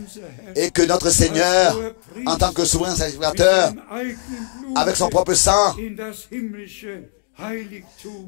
et que notre Seigneur, en tant que souverain sacrificateur, avec son propre sang,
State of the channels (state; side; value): silent; right; digital silence